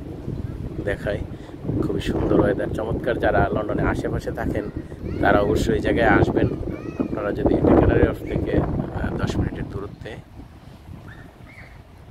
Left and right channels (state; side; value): identical; both; correlation 1.00